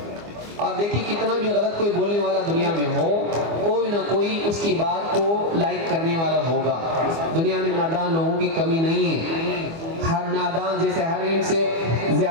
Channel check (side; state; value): left; late; 24 ms